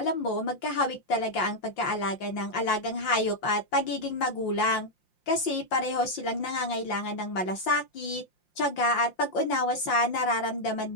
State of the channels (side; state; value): right; late; 5.7 ms